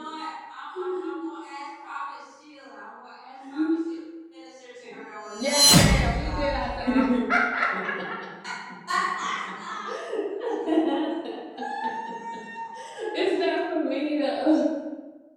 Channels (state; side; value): identical; both; correlation 1.00